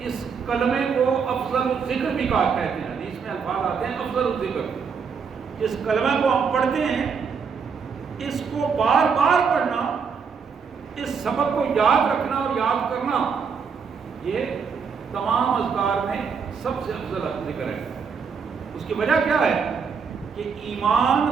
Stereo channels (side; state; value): left; quieter; 6.0 dB